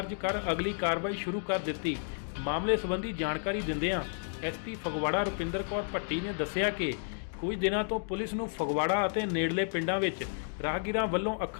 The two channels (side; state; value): right; silent; digital silence